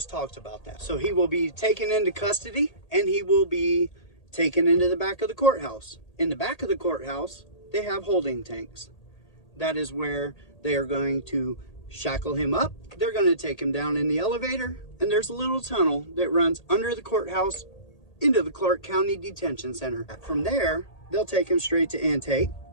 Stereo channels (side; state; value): right; late; 1.8 ms